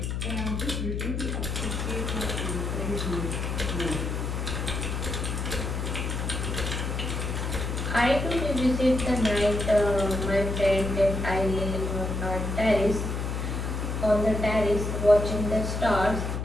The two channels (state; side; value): noise; left; hum, 2 dB below the sound